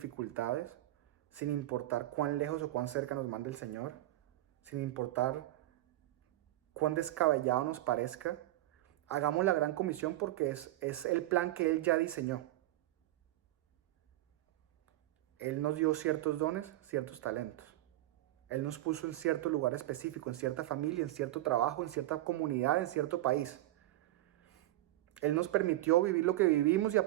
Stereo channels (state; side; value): quieter; left; 16.1 dB